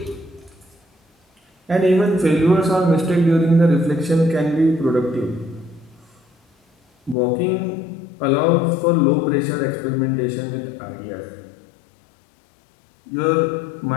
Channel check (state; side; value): drops out; right; at 7.2 s